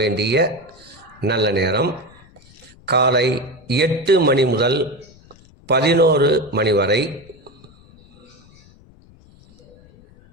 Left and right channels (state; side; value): noise; left; rumble, 26 dB below the sound